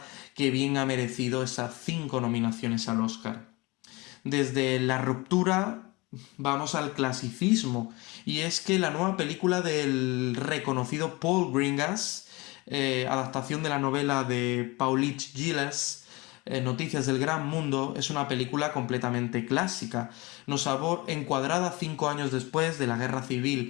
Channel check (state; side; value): quieter; right; 24.1 dB